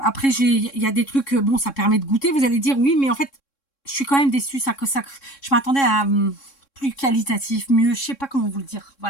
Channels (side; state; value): right; late; 3.6 ms